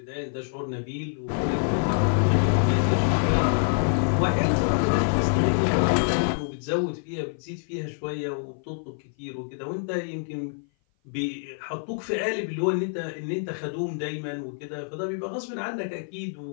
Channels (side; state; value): right; silent; 56 dB below the other